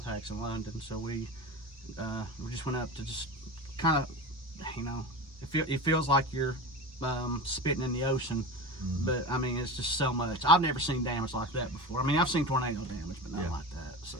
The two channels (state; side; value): normal; both; correlation 0.28